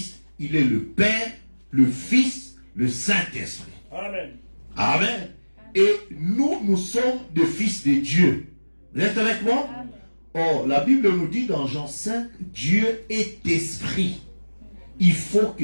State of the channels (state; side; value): inverted; both; correlation -1.00